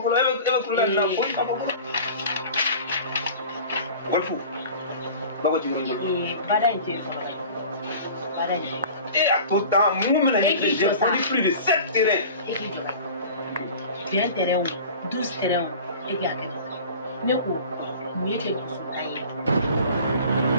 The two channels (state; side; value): inverted; both; correlation -0.41